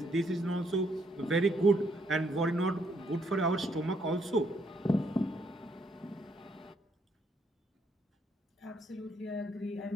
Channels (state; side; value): normal; both; correlation 0.72